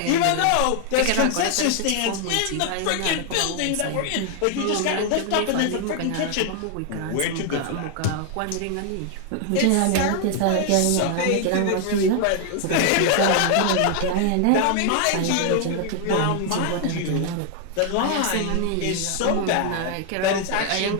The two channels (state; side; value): different; both; correlation 0.00